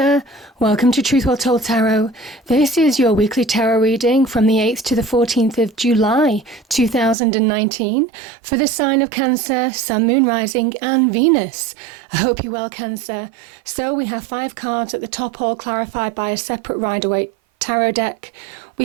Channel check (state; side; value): drops out; left; at 7.2 s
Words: welcome to Truth Well Told Tarot. This is your weekly tarot reading from the 8th to the 14th of July 2019 for the sign of Cancer, Sun, Moon, Rising and Venus. I hope you're well, Cancer. So we have 5 cards at the top, all clarified by a separate Rider-Waite tarot deck.